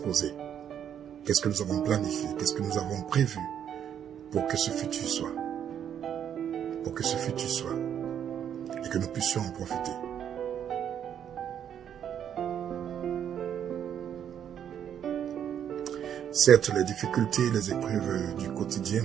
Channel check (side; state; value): left; quieter; 9.2 dB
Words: qu'est-ce que nous avons planifié, qu'est-ce que nous avons prévu pour que ce futur soit, et que nous puissions en profiter. Certes, les difficultés, les épreuves du quotidien